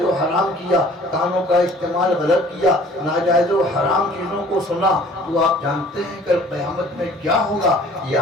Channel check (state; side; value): normal; both; correlation 0.52